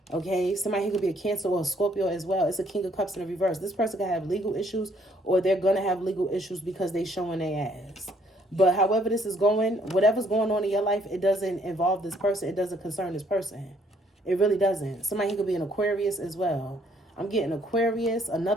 Okay, somebody here could be a Cancer or a Scorpio as well. It's a King of Cups in the reverse. This person could have legal issues, or they're going to have legal issues because they showing their ass. But however this is going, whatever's going on in your life, it doesn't involve this person. It doesn't concern this person. It really doesn't. Somebody here could be an Aquarius as well. I'm getting Aquarius,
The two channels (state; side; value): normal; both; correlation 0.66